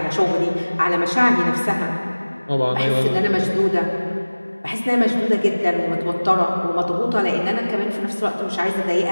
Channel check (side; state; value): both; inverted; correlation -1.00